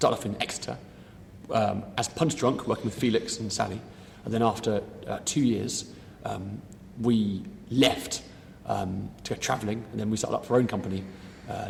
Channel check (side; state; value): both; identical; correlation 1.00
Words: off in Exeter as punch drunk, working with Felix and Sally. And then after 2 years, we left to go travelling, and then we started up our own company